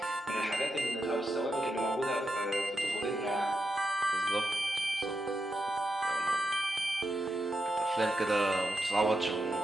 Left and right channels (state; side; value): normal; both; correlation 0.85